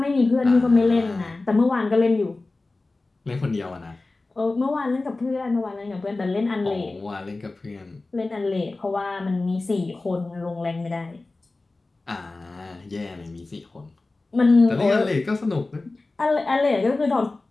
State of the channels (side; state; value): right; quieter; 3.3 dB